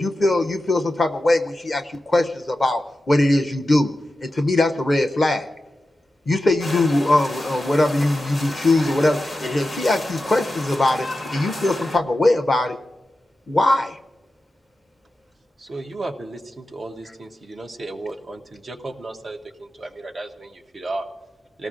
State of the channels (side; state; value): both; normal; correlation 0.92